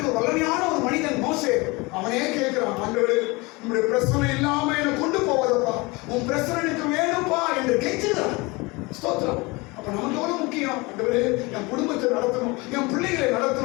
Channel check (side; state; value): right; quieter; 24.8 dB